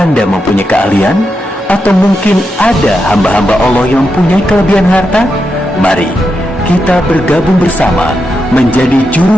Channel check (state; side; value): normal; both; correlation 0.86